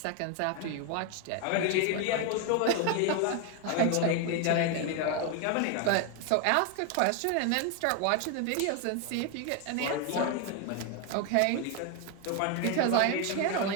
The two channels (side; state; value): both; different; correlation 0.01